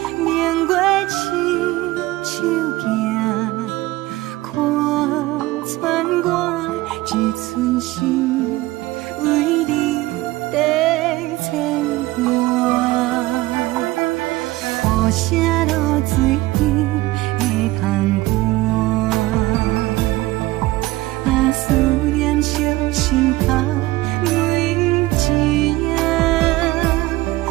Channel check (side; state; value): left; quieter; 18.7 dB